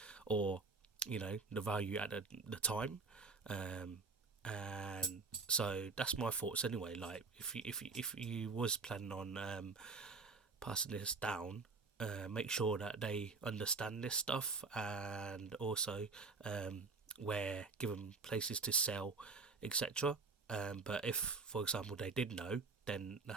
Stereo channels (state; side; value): quieter; left; 4.3 dB